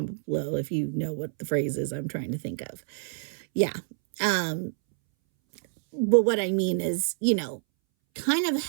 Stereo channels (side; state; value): left; silent; 60 dB below the other